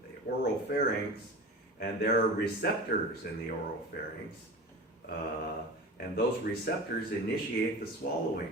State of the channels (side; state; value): both; normal; correlation 0.32